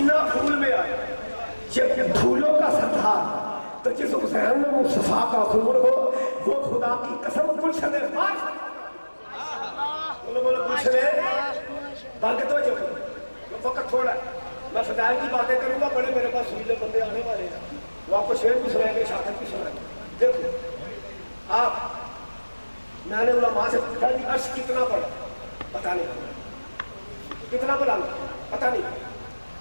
پھول میں آیا جب پھولوں کا سردار تو جس حسین میں مصطفیٰ کا خون ہو وہ خدا کی قسم گلشن پاک بولو بولو گلشن بال کے توجہ کرو وقت تھوڑا ہے میں فضائل کی باتیں کروں گا بڑے میرے پاس سویلے بندے آنے والے ہیں وہ آپ کو شعر بھی سنائیں گے شہادت بھی سنائیں گے دیکھو آپ میں نے علماء سے پوچھا کہ عرش کتنا بڑا پتہ نہیں کتنا بڑا پتہ نہیں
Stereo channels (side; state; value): both; inverted; correlation -1.00